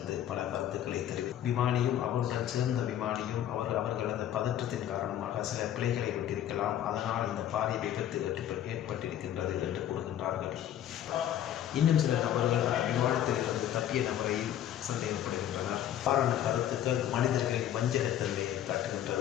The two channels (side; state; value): right; quieter; 11.1 dB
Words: பல கருத்துக்களை விமானியும் அவருடன் சேர்ந்த விமானியும் அவர்கள் அந்த பதற்றத்தின் காரணமாக சில பிழைகளை விட்டிருக்கலாம், அதனால் இந்த பாரிய விபத்து ஏற்பட்டிருக்கின்றது என்று கூறுகின்றார்கள். இன்னும் சில நபர்கள் விமானத்தில் இருந்து தப்பிய நபரையும் சந்தேகப்படுகின்றனர். காரண கருத்துக்கள் மனிதர்களின் வஞ்சகத்தன்மையை